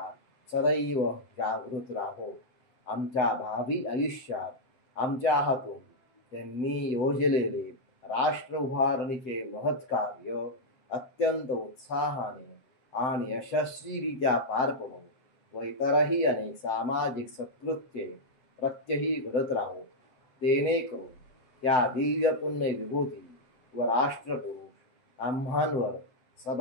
सदैव जागृत राहो. आमच्या भावी आयुष्यात आमच्या हातून त्यांनी योजलेले राष्ट्र उभारणीचे महत् कार्य अत्यंत उत्साहाने आणि यशस्वीरित्या पार पडो व इतरही अनेक सामाजिक सत्कृत्ये प्रत्यही घडत राहो. जेणेकरून त्या दिव्य पुण्य विभूती व राष्ट्रपुरुष आम्हांवर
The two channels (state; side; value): late; right; 7.9 ms